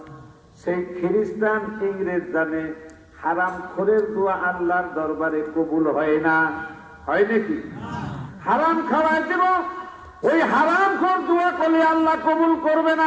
সেই খ্রিস্টান ইংরেজ জানে হারাম খোরের দোয়া আল্লাহর দরবারে কবুল হয় না। হয় নাকি? হারাম খাওয়াই দেব, ওই হারাম খোর দোয়া করলে আল্লাহ কবুল করবে না?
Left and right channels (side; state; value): both; identical; correlation 1.00